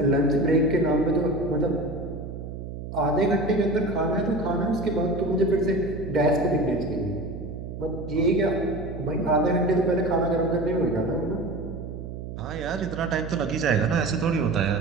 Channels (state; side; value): noise; right; hum, 9 dB below the sound